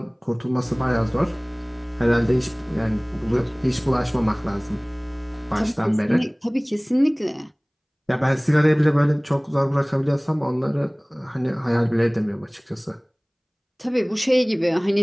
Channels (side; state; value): both; identical; correlation 1.00